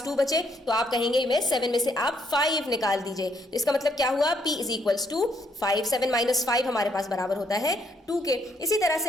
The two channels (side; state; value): both; normal; correlation 0.72